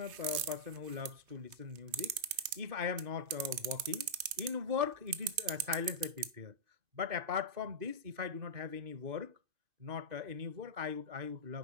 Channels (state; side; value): late; left; 2.5 ms